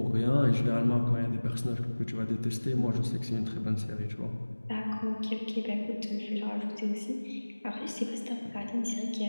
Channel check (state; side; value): inverted; both; correlation -1.00